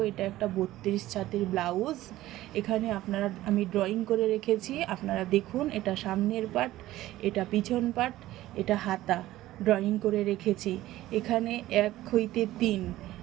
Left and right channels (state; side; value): quieter; left; 15.6 dB